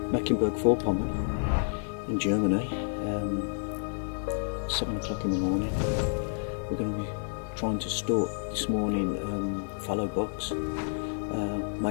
Mecklenburg-Vorpommern in Germany, 7 o'clock in the morning. We're going to be trying to stalk this morning fallow bucks,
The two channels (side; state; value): right; silent; 58 dB below the other